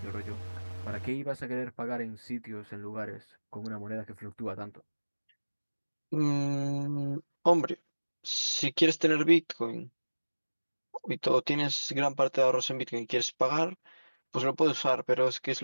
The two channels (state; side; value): inverted; both; correlation -1.00